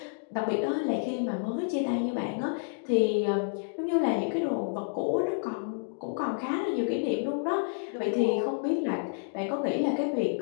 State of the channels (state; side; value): silent; right; digital silence